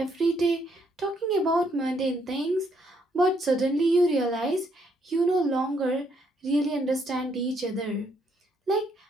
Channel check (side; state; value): both; normal; correlation 0.72